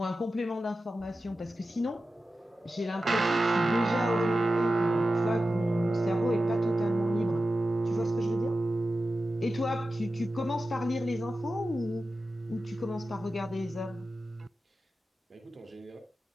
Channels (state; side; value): normal; both; correlation 0.93